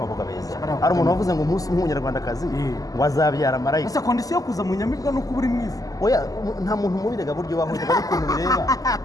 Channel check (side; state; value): right; late; 0.17 ms